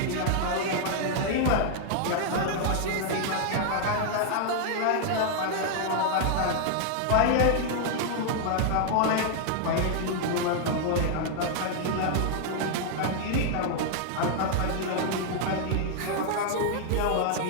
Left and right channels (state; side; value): different; both; correlation -0.01